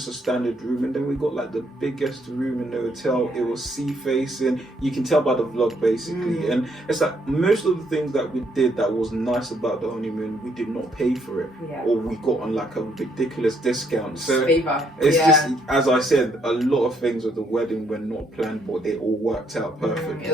a standard room, and then we got like the biggest room in the hotel. It was sea facing. You can tell by the vlog basically. And it's like most of the things that we did that was nice about the honeymoon, we did not pay for it, or we got on like a ridiculous discount. So it's just, as I said, a lot of things with the wedding were not planned, but they all worked out perfectly. It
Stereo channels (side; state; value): both; normal; correlation 0.71